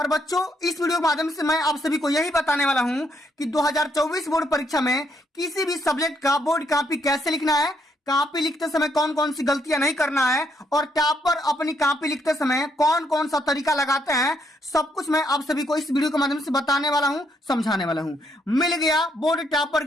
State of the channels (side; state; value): both; normal; correlation 0.73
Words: बच्चों, इस वीडियो के माध्यम से मैं आप सभी को यही बताने वाला हूं कि 2024 बोर्ड परीक्षा में किसी भी सब्जेक्ट का बोर्ड कॉपी कैसे लिखना है, कॉपी लिखते समय कौन कौन सी गलतियां नहीं करना है, और टॉपर अपनी कॉपी लिखते समय कौन कौन सा तरीका लगाते हैं, सब कुछ मैं आप सभी को इस वीडियो के माध्यम से बताने वाला हूं, समझाने वाला हूं। मिल गया बोर्ड टॉपर